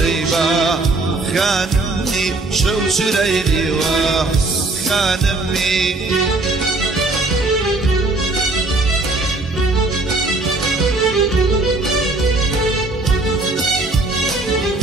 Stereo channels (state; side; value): quieter; left; 3.1 dB